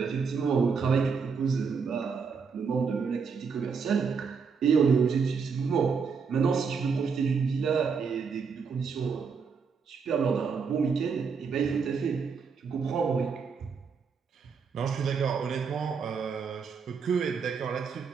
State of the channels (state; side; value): quieter; left; 5.7 dB